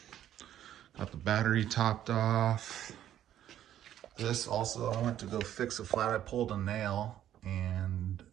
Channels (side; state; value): left; quieter; 11.4 dB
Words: Got the battery topped off. This also, I went to go fix a flat. I pulled a nail, and